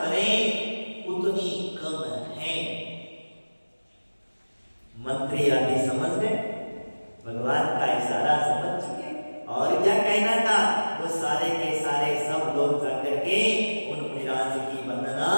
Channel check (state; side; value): inverted; both; correlation -1.00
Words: उतनी कम है। मंत्री आदि समझ गए, भगवान का इशारा समझ चुके, और क्या कहना था, वो सारे के सारे सब लोग जाकर के उन मुनिराज की वंदना